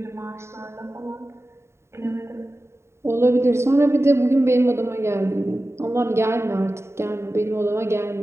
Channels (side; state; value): left; late; 0.13 ms